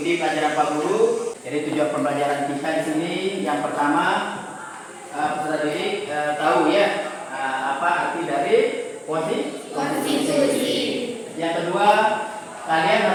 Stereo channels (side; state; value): both; identical; correlation 1.00